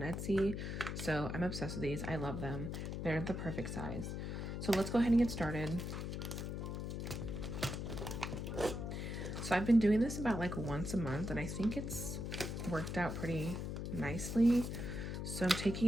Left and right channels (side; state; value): left; noise; hum, 4 dB below the sound